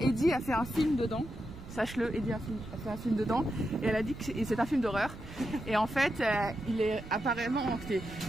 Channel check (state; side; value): noise; right; rumble, 14 dB below the sound